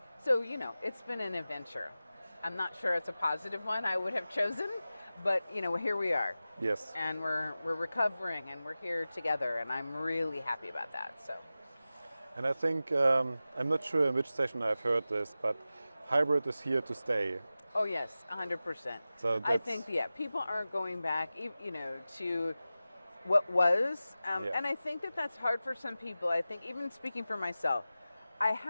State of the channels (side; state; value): both; inverted; correlation -0.95